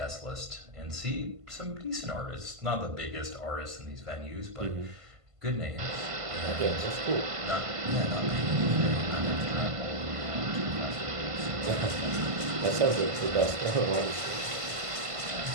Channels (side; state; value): left; late; 1.5 ms